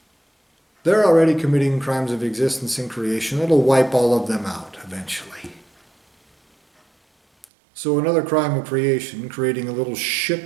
They're already committing crimes of existence and creation. It'll wipe all of them out eventually. So another crime of creation, creating a little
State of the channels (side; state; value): left; drops out; at 7.5 s